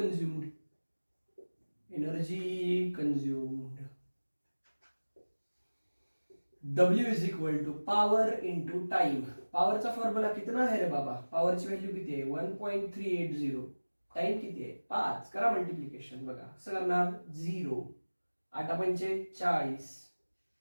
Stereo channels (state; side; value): inverted; both; correlation -1.00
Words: Energy consumed W is equal to power into time. पॉवरचा फॉर्म्युला कितना आहे रे बाबा? पॉवरची व्हॅल्यू किती आहे? 1.380. टाइम किती आहे? 5. करा मल्टिप्लिकेशन. बघा कसं करणार? 0 8 पंचे 40,